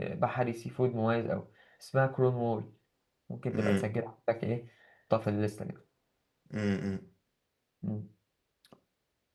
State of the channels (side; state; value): both; identical; correlation 1.00